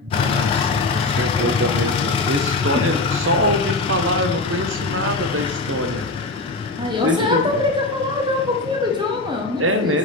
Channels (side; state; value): right; quieter; 3.0 dB